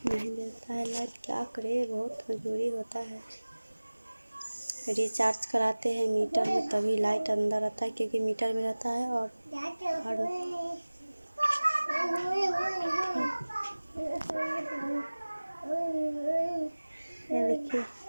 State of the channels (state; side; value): inverted; both; correlation -1.00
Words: नहीं देता है लाइट। क्या करे, बहुत मजबूरी होता है। रिचार्ज कराते हैं मीटर में तभी लाइट अंदर आता है क्योंकि मीटर में रहता है। और ये देखिए